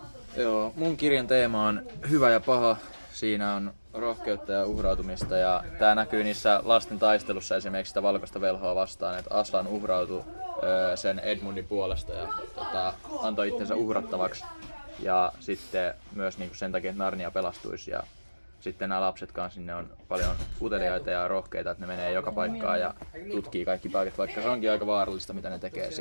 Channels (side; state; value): both; inverted; correlation -1.00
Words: Joo, mun kirjan teema on hyvä ja paha. Siinä on rohkeutta ja uhrautumista ja tää näkyy niissä lasten taistelussa esimerkiksi sitä valkoista velhoa vastaan, että Aslan uhrautui sen Edmundin puolesta ja antoi itsensä uhrattavaksi ja sitten myös niinku sen takia, että Narnia pelastuisi ja sitten nämä lapset kanssa, ne on paljon uteliaita ja rohkeita, että ne menee joka paikkaan ja tutkii kaikki paikat, vaikka se onkin aika vaarallista, mitä ne tekee